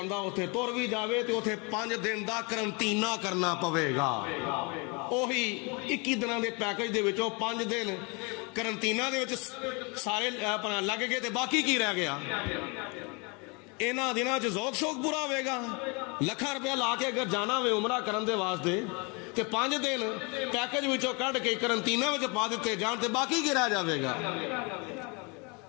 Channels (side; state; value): right; quieter; 30.8 dB